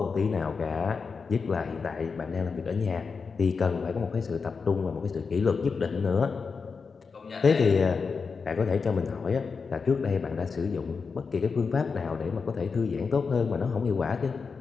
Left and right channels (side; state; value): right; quieter; 5.1 dB